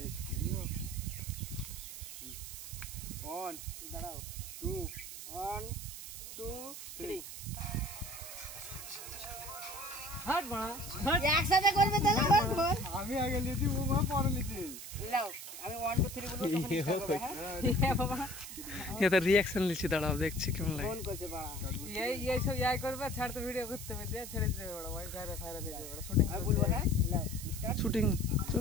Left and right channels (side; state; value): right; noise; hiss, 10 dB below the sound